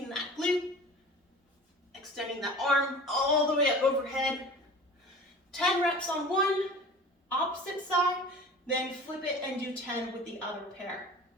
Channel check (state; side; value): normal; both; correlation 0.40